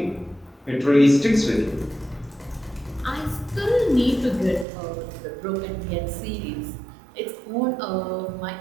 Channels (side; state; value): left; drops out; at 4.7 s